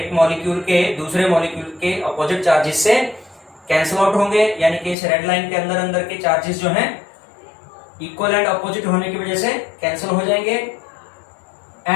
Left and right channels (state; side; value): drops out; right; at 5.0 s